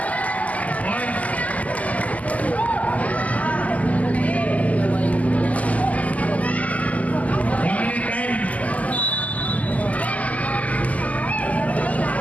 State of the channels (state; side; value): late; right; 0.074 ms